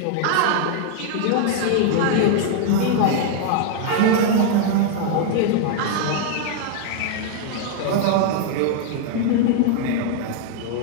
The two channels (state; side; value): different; both; correlation 0.00